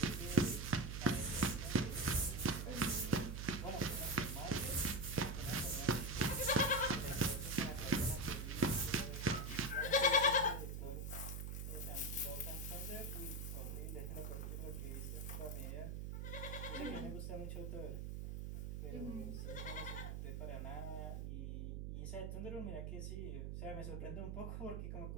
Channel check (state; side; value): noise; right; hum, 4 dB below the sound